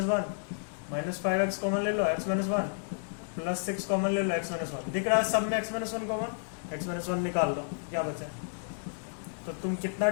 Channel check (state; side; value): silent; right; digital silence